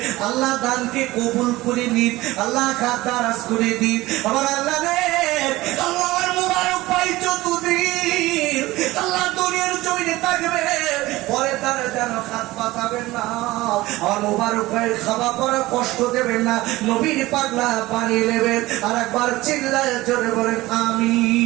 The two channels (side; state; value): left; quieter; 18.5 dB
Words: আল্লাহ দানকে কবুল করে নিন, আল্লাহ খাতারাজ করে দিন। আবার আল্লাহ রে, আল্লাহর মোবারক ভাই যতদিন আল্লাহ দুনিয়ার জমিনে থাকবে, পরে তারা যেন হাত পাতাবেন না। আর মোবারক ভাই খাওয়া পড়া কষ্ট দেবেন না, নবীর পাগলা পানি নেবেন। আর একবার চিল্লায় জোরে বলেন